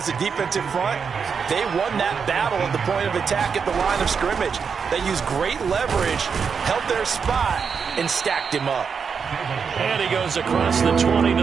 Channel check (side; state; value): left; quieter; 6.1 dB